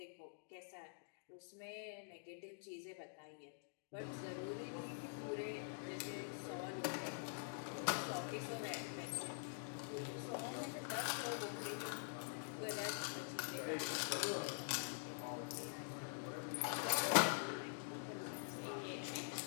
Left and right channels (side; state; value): right; silent; digital silence